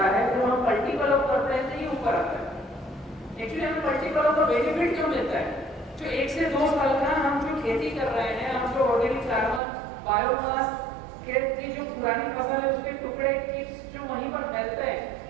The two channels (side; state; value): left; drops out; at 9.6 s